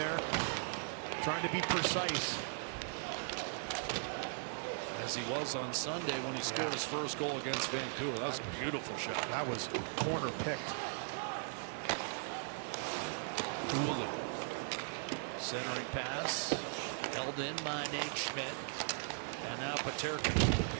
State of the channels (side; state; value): left; silent; digital silence